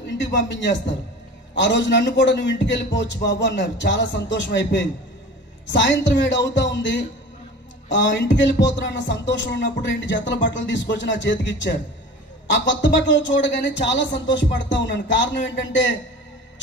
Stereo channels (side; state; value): both; normal; correlation 0.38